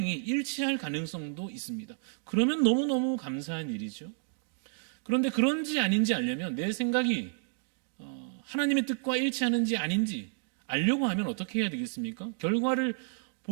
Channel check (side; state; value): left; silent; digital silence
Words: 일치할 가능성도 있습니다. 그러면 너무너무 감사한 일이죠. 그런데 그런지 아닌지 알려면 내 생각이 하나님의 뜻과 일치하는지 아닌지 알려고 하면 어떻게 해야 되겠습니까? 결과를